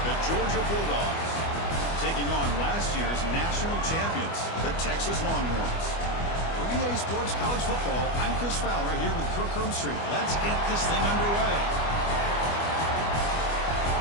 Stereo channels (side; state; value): right; late; 25 ms